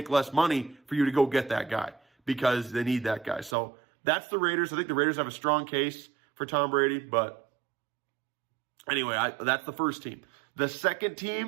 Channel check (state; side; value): drops out; left; at 3.6 s